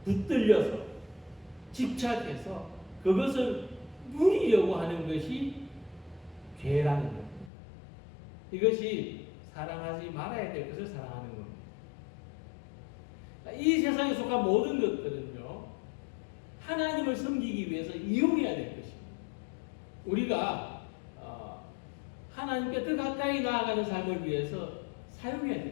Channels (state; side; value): drops out; right; at 7.5 s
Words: 붙들려서 집착해서 그것을 누리려고 하는 것이 죄라는 겁니다. 이것이 사랑하지 말아야 될 것을 사랑하는 겁니다. 이 세상에 속한 모든 것들은요, 하나님을 섬기기 위해서 이용해야 될 것입니다. 우리가 하나님께 더 가까이 나아가는 삶을 위해서 사용해야